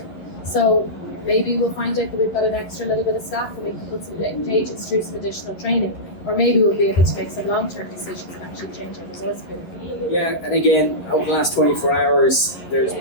So maybe we'll find out that we've got an extra little bit of staff and we can put some agents through some additional training, or maybe we'll be able to make some long-term decisions and actually change our resource pool. Yeah, and again, over the last 24 hours, there's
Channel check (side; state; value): right; late; 11 ms